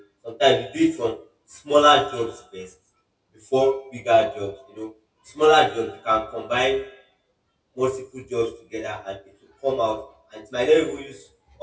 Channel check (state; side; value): identical; both; correlation 1.00